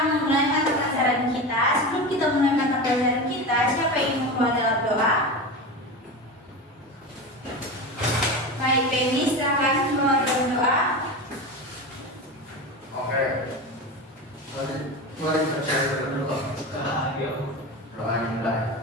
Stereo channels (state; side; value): normal; both; correlation 0.25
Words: memulai mata pelajaran kita. Sebelum kita mulai mata pelajaran kita, siapa yang mau membawa dalam doa? Baik, Penny, silakan membawa dalam doa. Oke. Mari kita cari dulu. Doa yang baik.